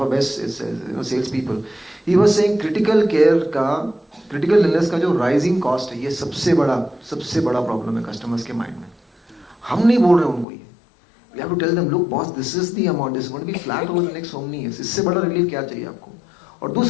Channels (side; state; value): right; drops out; at 10.5 s